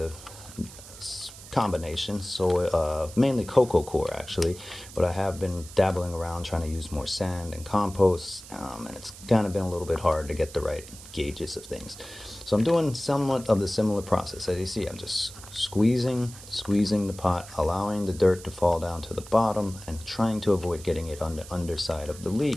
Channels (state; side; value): noise; right; hiss, 16 dB below the sound